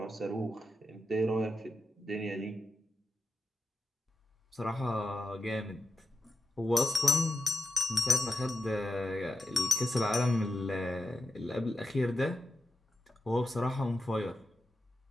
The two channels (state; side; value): normal; both; correlation 0.90